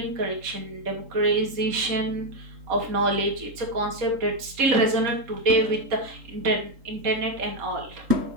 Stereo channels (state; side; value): late; left; 3.8 ms